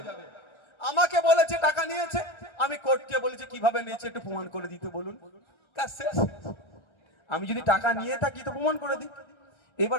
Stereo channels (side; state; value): right; late; 1.3 ms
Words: আমাকে বলেছে টাকা নিয়েছে, আমি কোর্টকে বলেছি কিভাবে নিয়েছে একটু প্রমাণ করে দিতে বলুন, তা শেষ। আমি যদি টাকা নিয়ে থাকি তো প্রমাণ করে দিই।